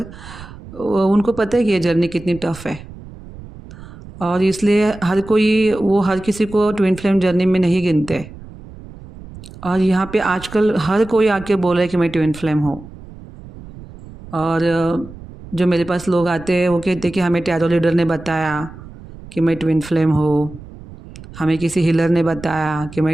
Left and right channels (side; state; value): right; noise; rumble, 17 dB below the sound